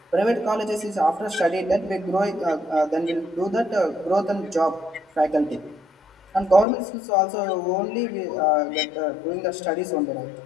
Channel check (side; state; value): right; drops out; at 6.7 s